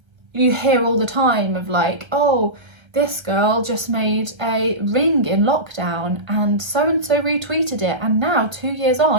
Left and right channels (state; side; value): late; left; 1.3 ms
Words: hear all the time of like, oh, this girl just made a ring in lockdown and so retweeted it, and now 2 years